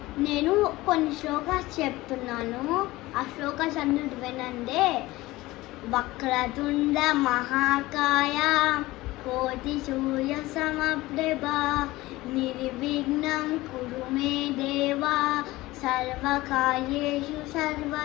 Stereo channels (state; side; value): quieter; right; 18.9 dB